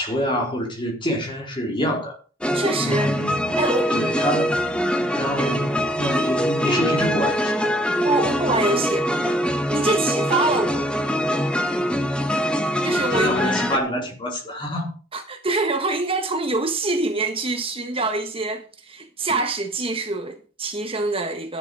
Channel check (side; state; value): both; normal; correlation 0.58